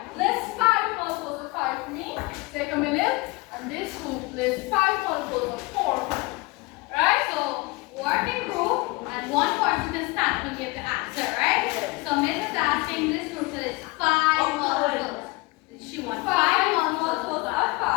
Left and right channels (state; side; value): quieter; right; 24.9 dB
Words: List 5 multiples of 5 for me. Take a minute. And this group lists 5 multiples of 4 for me. Right? So work in group, and one person can stand and give the answer, right? So Miss is asking this group to list 5 multiples. She wants 5 multiples of 5.